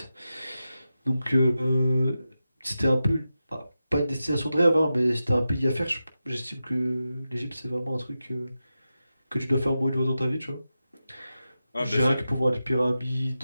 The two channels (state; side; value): inverted; both; correlation -0.91